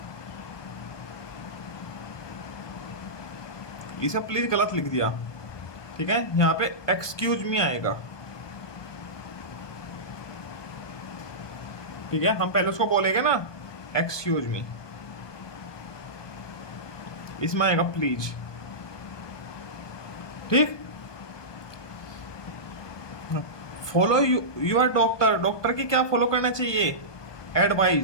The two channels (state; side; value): late; right; 1.2 ms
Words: इसे प्लीज गलत लिख दिया। ठीक है, यहां पे एक्सक्यूज मी आएगा। ठीक है, हम पहले उसको बोलेंगे ना एक्सक्यूज मी, इसमें आएगा प्लीज। ठीक, फॉलो यूर डॉक्टर, डॉक्टर की क्या फॉलो करना चाहिए?